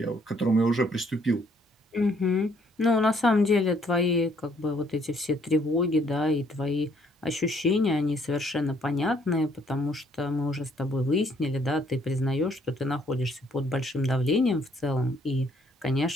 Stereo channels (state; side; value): normal; both; correlation 0.66